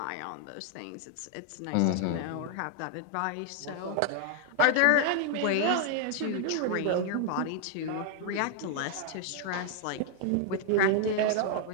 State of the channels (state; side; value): different; both; correlation 0.00